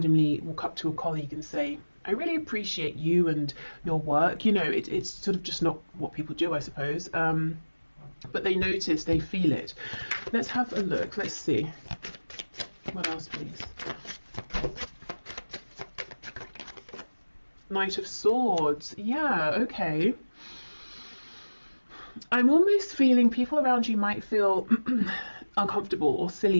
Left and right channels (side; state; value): both; inverted; correlation -1.00